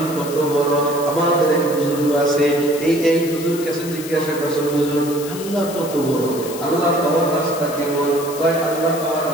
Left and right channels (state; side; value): noise; left; hiss, 12 dB below the sound